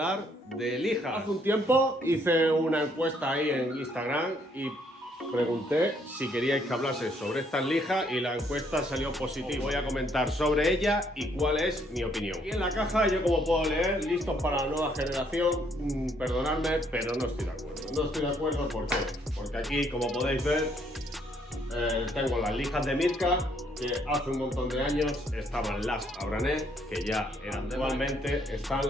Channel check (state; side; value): normal; both; correlation 0.68